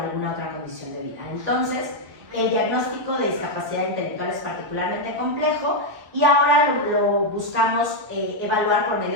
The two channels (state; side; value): late; left; 1.7 ms